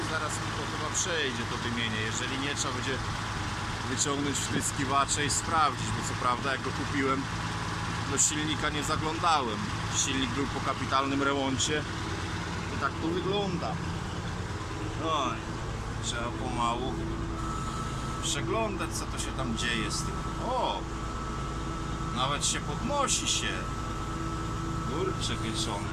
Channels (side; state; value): both; identical; correlation 1.00